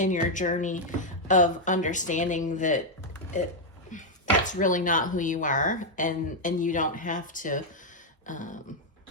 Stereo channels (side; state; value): both; normal; correlation -0.01